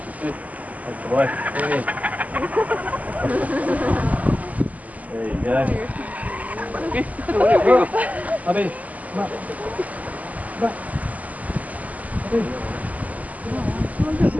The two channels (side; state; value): left; late; 0.076 ms